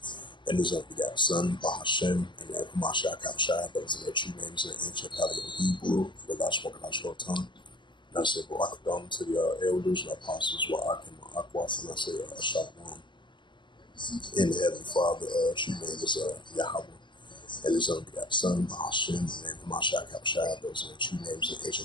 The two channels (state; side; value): late; right; 0.23 ms